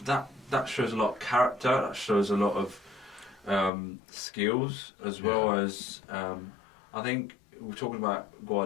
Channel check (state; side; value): drops out; right; at 3.7 s